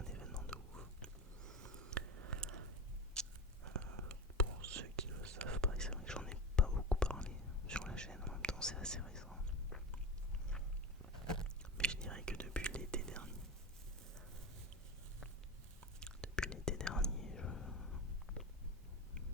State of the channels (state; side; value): normal; both; correlation 0.24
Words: événement de ouf. Pour ceux qui ne le savent pas, c'est vrai que j'en ai pas beaucoup parlé sur la chaîne, en même temps c'est assez récent. Mais je dirais que depuis l'été dernier,